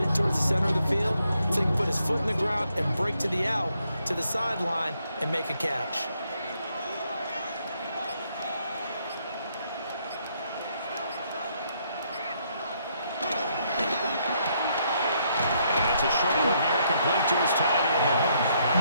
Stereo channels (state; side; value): inverted; both; correlation -0.73